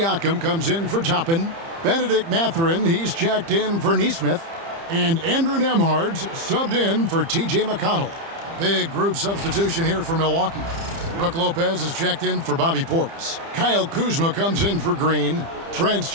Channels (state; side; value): late; left; 30 ms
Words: comes in for Toppin. Benedict Mathurin, he's checked in for Neesmith. And Andrew Nembhard's subbed in for T.J. McConnell. Big group substitution here for Milwaukee. Brook Lopez is checked in for Bobby Portis. Kyle Kuzma comes in for Green. Trent's